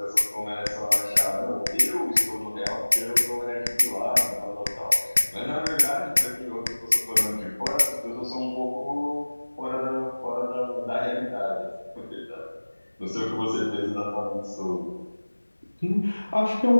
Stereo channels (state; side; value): inverted; both; correlation -1.00